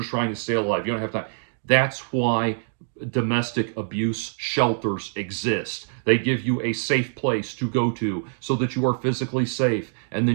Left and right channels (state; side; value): silent; left; digital silence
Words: trying to stay alive. You don't have time. That's why domestic abuse shelters exist. They give you a safe place to go to so that you are physically safe, and